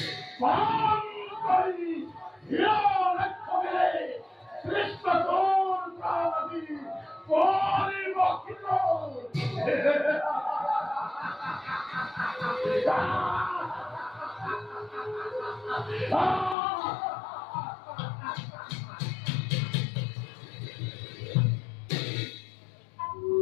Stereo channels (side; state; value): right; drops out; at 16.6 s